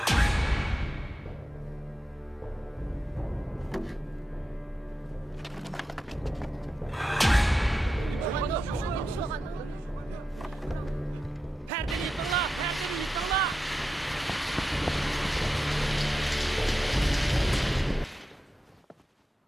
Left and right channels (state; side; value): normal; both; correlation 0.90